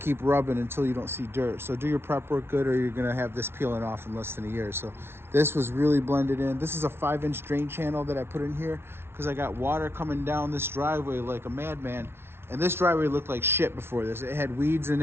rubbing until you don't see dirt. So do your prep work good, or you're going to have this peeling off in less than a year. So this was really blended in. This is a 5-inch drain channel that I put in here because I got water coming down this driveway like a madman. And this driveway looked like shit before this. It had weeds in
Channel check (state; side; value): late; left; 0.12 ms